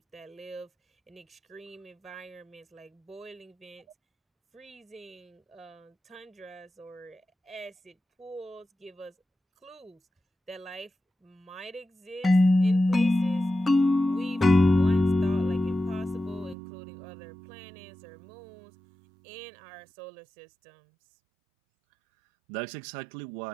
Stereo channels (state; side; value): drops out; left; at 16.6 s